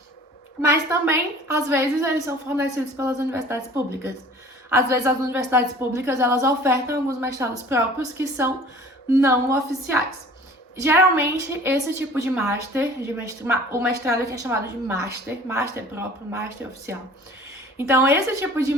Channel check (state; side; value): normal; both; correlation 0.47